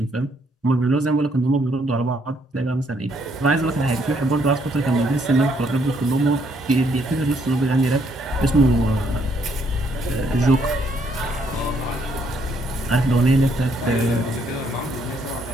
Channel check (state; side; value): normal; both; correlation 0.70